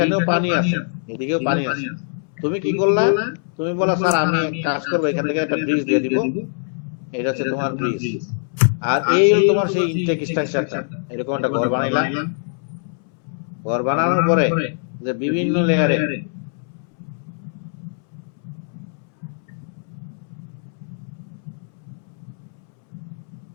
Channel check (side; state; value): right; silent; 64 dB below the other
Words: পানি আছে, এদিকেও পানি আছে। তুমি কি করলা, তুমি বলা স্যার আমি এক কাজ করবো, এখান থেকে একটা ব্রিজ দিয়ে দিব, এটা হচ্ছে তোমার ব্রিজ। আর এই হলো তোমার সেই ইনটেক স্ট্রাকচারটা। এরকম একটা ঘর বানাইলা, ঘর বানানোর পরে যে বিভিন্ন লেয়ারে